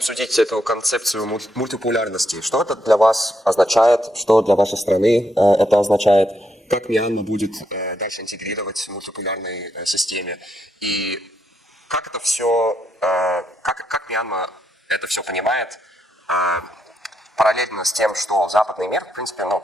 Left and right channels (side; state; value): both; normal; correlation 0.80